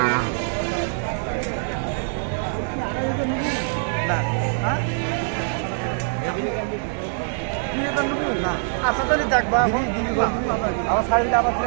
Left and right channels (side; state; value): left; silent; 63 dB below the other